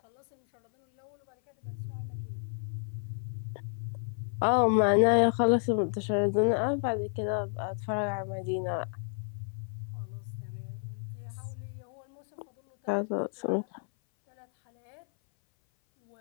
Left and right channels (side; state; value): right; silent; 57 dB below the other